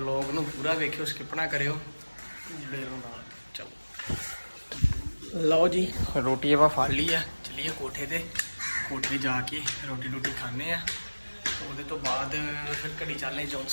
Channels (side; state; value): both; inverted; correlation -1.00